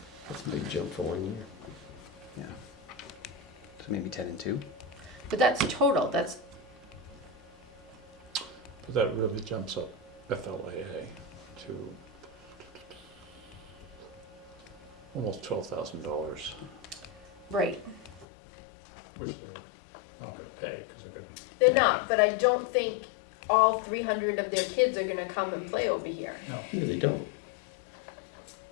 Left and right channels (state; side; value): drops out; right; at 18.2 s